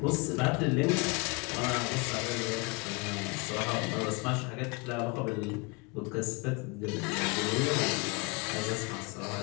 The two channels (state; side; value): quieter; right; 29.3 dB